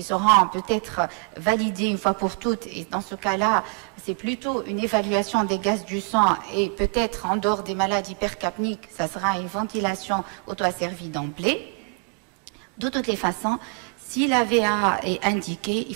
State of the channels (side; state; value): left; quieter; 36.9 dB